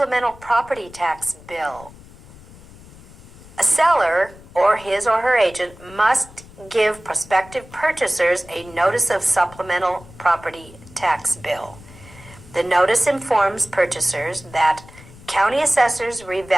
property tax bill. A seller or his or her agent must give prospective purchasers a notice of supplemental property tax bill. The notice informs purchasers that county assessors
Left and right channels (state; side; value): noise; left; rumble, 21 dB below the sound